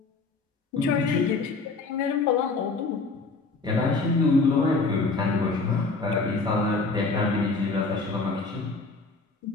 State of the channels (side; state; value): right; quieter; 3.9 dB